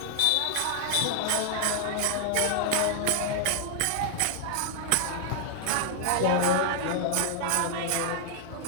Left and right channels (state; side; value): different; both; correlation 0.00